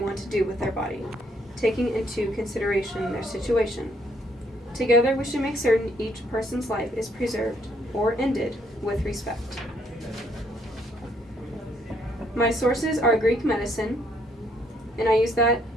to do with their body, taking into consideration their situation. Together, we should make certain each person's life is preserved or ended with respect. My sources are Greek medicine, and I use that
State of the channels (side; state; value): both; normal; correlation 0.69